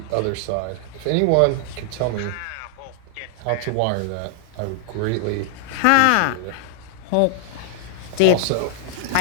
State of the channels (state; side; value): different; both; correlation 0.00